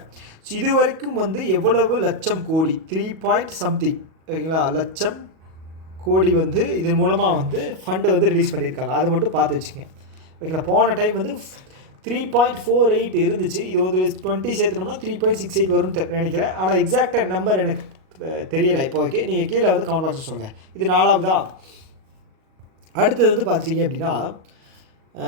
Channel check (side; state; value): left; late; 37 ms